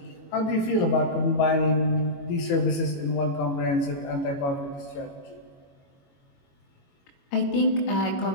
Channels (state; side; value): late; right; 22 ms